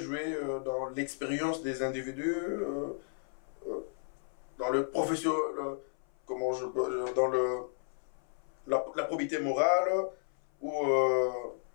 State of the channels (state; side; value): silent; right; 56 dB below the other